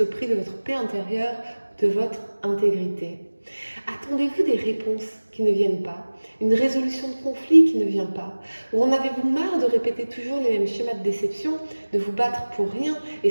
au prix de votre paix intérieure, de votre intégrité. Attendez-vous des réponses qui ne viennent pas, une résolution de conflit qui ne vient pas, ou en avez-vous marre de répéter toujours les mêmes schémas de déception, de vous battre pour rien et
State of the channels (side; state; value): both; inverted; correlation -1.00